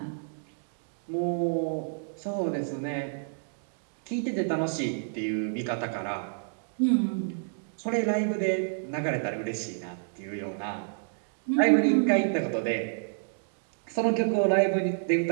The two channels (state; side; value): silent; left; digital silence